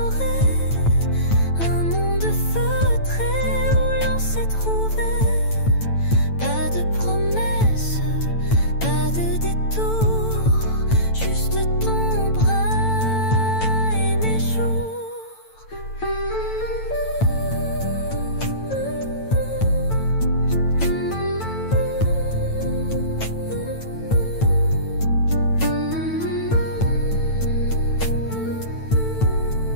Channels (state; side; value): late; right; 9.0 ms